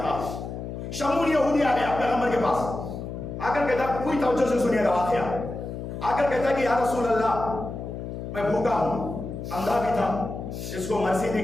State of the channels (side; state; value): left; noise; hum, 7 dB below the sound